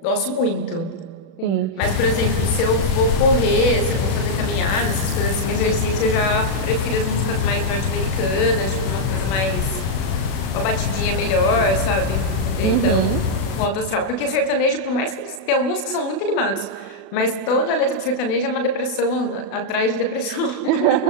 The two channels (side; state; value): right; late; 36 ms